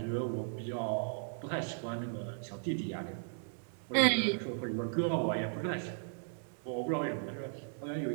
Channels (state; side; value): silent; left; digital silence